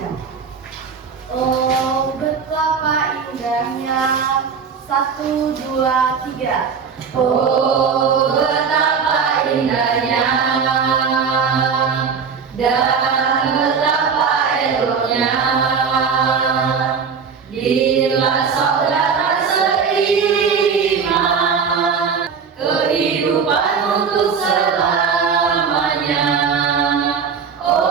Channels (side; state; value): left; quieter; 6.1 dB